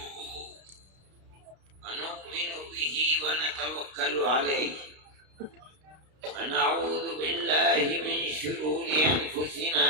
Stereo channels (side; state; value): left; late; 33 ms